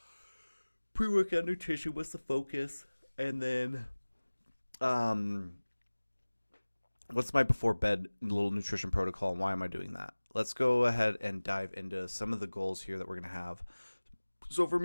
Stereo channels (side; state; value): both; inverted; correlation -1.00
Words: Pre-workout nutrition, what's the focus? And then, what's my before bed little nutrition protocol, and why am I doing that? Let's go ahead and dive into some of the goals here that we're going to have. So for